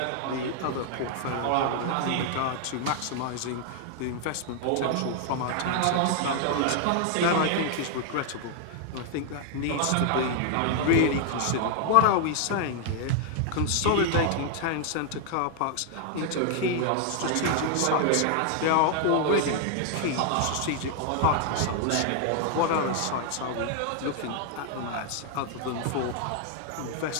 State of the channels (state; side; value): different; both; correlation 0.00